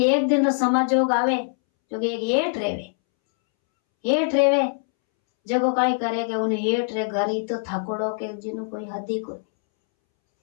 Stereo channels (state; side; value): silent; right; 63 dB below the other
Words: एक दिन रो समाजोग आवे जो कि एक हेठ रेवे जो को काई करे के उन्हें हेठ रे घर तो थकोड़ो के जिनो कोई